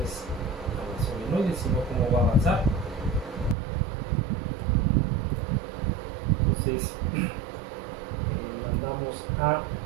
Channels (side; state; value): left; drops out; at 3.6 s